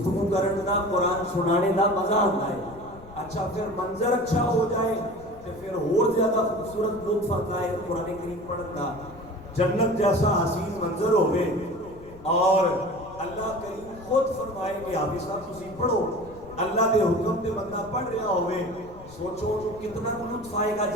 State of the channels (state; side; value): noise; left; rumble, 20 dB below the sound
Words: کرن دا قرآن سنانے دا مزہ آتا ہے. اچھا پھر منظر اچھا ہو جائے تو پھر اور زیادہ خوبصورت لطف آتا ہے قرآن کریم پڑھن دا. جنت جیسا حسین منظر ہوئے اور اللہ کریم خود فرمائے کہ حافظ صاحب تسی پڑھو. اللہ دے حکم تے بندہ پڑھ رہا ہوئے سوچو کتنا لطف آئے گا